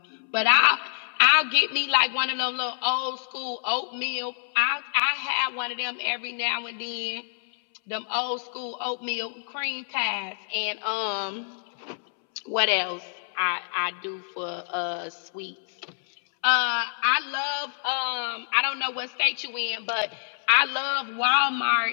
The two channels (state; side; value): silent; right; 60 dB below the other